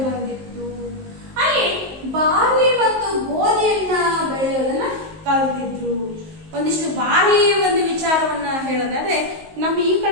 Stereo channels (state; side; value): late; left; 19 ms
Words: ಬಂದಿತ್ತು. ಅಲ್ಲಿ ಬಾರ್ಲಿ ಮತ್ತು ಗೋಧಿಯನ್ನ ಬೆಳೆಯೋದನ್ನ ಕಲ್ತಿದ್ರು. ಒಂದಿಷ್ಟು ಬಾರ್ಲಿ ಒಂದು ವಿಚಾರವನ್ನ ಹೇಳೋದಾದ್ರೆ, ನಮ್ಮ ಈ